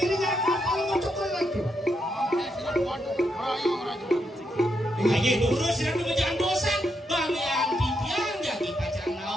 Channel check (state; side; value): normal; both; correlation 0.80